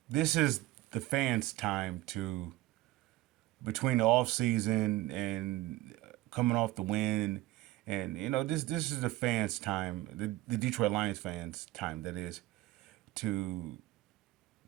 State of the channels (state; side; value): quieter; left; 17.2 dB